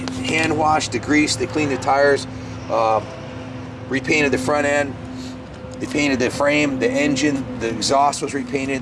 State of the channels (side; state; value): both; identical; correlation 1.00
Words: hand washed, degreased. They cleaned the tires, repainted the front end. They painted the frame, the engine, the exhaust was